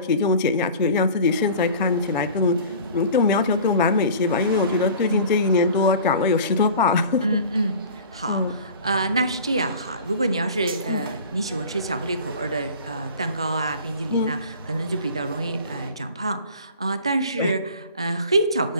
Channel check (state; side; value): inverted; both; correlation -0.41